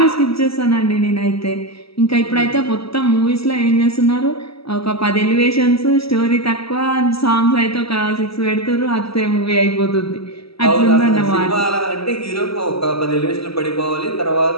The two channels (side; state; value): right; late; 0.76 ms